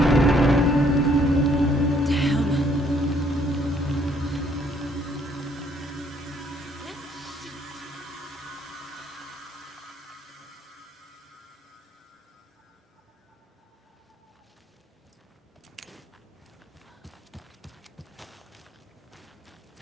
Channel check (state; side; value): normal; both; correlation 0.65